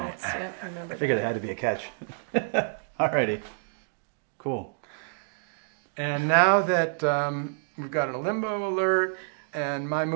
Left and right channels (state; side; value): silent; left; digital silence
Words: yep, remember I figured that. it had to be a catch. Alrighty. Cool. And now that we've got a limbo alert and my